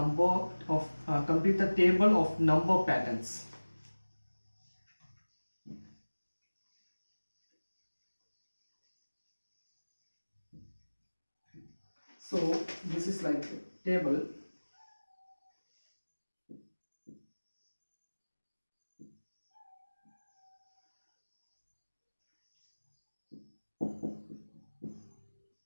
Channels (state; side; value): inverted; both; correlation -1.00